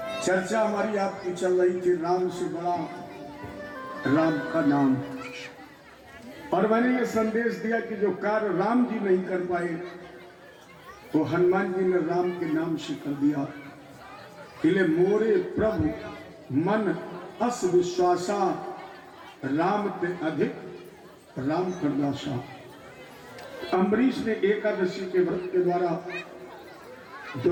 चर्चा हमारी आपकी चल रही थी राम से बड़ा राम का नाम, और मैंने ये संदेश दिया कि जो कार्य राम जी नहीं कर पाए वो हनुमान जी ने राम के नाम से कर दिया। इले मोरे प्रभु मन अस विश्वासा, राम ते अधिक राम करदासा। अम्बरीश ने एकादशी के व्रत के द्वारा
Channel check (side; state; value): both; identical; correlation 1.00